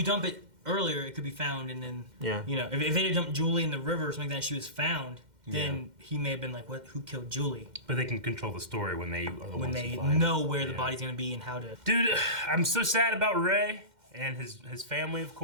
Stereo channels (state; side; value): late; left; 2.1 ms